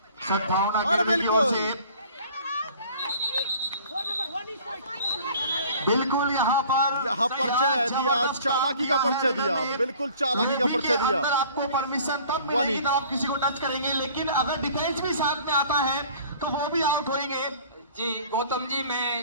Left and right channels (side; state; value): both; inverted; correlation -0.50